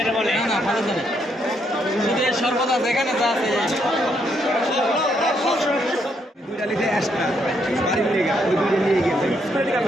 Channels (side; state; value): both; normal; correlation 0.75